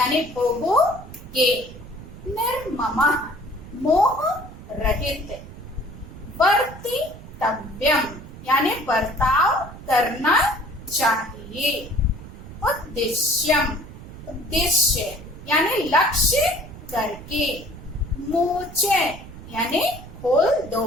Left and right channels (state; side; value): noise; right; rumble, 15 dB below the sound